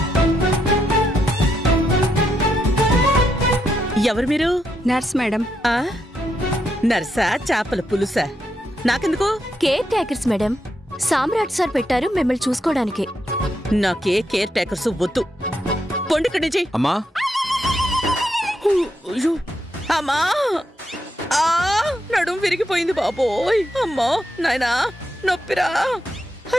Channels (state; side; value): normal; both; correlation 0.81